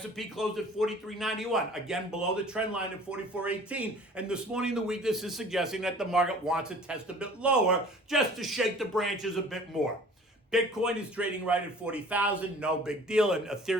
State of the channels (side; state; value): both; normal; correlation 0.48